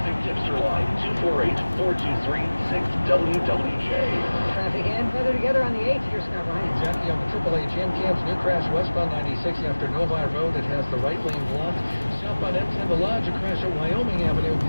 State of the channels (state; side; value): inverted; both; correlation -1.00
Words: Tipster Line, 248-423-6WWJ. Traffic and weather together on the 8th. Here's Scott Ryan. Jackie on the AAA Jam Camps, new crash westbound 96 after Novi Road. It has the right lane blocked. Southbound M10 the Lodge, a crash at Wyoming Avenue.